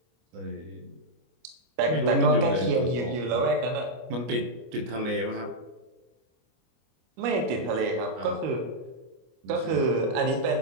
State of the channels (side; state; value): left; late; 25 ms